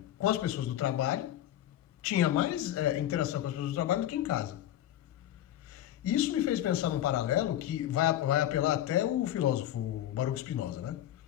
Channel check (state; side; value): quieter; right; 12.4 dB